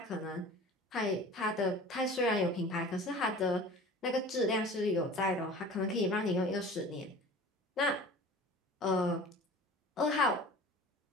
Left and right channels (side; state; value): both; normal; correlation 0.42